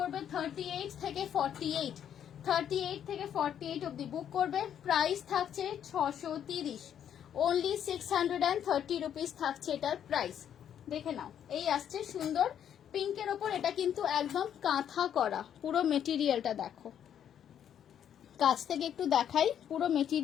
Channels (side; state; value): right; quieter; 9.4 dB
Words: 38 থেকে 48, 38 থেকে 48 অব্দি বুক করবে। প্রাইস থাকছে 630, অনলি 630 রুপিস থাকছে এটার প্রাইস। দেখে নাও, এই আসছে সুন্দর পিঙ্কের ওপর। এটা কিন্তু একদম কাঁথা করা, পুরো মেটেরিয়ালটা দেখো, কাছ থেকে একটু দেখাই। পুরো